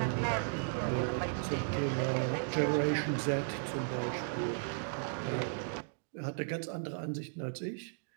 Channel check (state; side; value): silent; left; digital silence